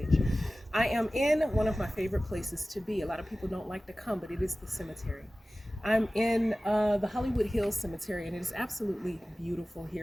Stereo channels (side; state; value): both; normal; correlation 0.97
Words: I am in one of my favorite places to be. A lot of people don't like to come, but it is the cemetery. I'm in the Hollywood Hills Cemetery, and it is absolutely beautiful